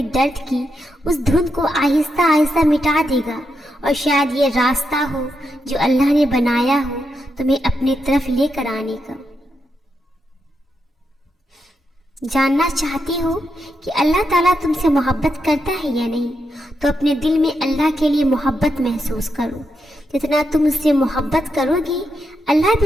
درد کی اس دھند کو آہستہ آہستہ مٹا دے گا، اور شاید یہ راستہ ہو جو اللہ نے بنایا ہو تمہیں اپنی طرف لے کر آنے کا۔ جاننا چاہتی ہو کہ اللہ تعالیٰ تم سے محبت کرتا ہے یا نہیں، تو اپنے دل میں اللہ کے لیے محبت محسوس کرو۔ جتنا تم اس سے محبت کرو گی اللہ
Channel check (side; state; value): both; normal; correlation 0.84